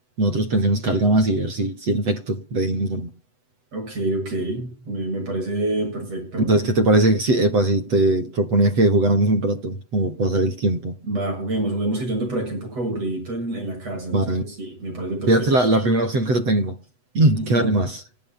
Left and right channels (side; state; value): left; late; 8.0 ms